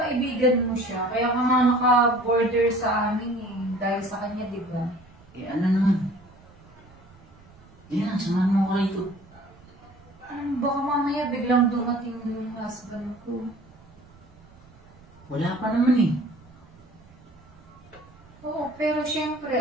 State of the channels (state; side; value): noise; right; rumble, 25 dB below the sound